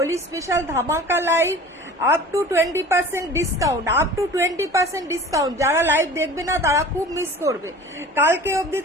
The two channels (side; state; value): both; normal; correlation 0.42